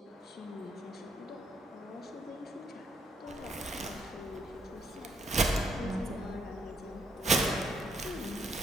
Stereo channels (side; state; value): both; normal; correlation 0.73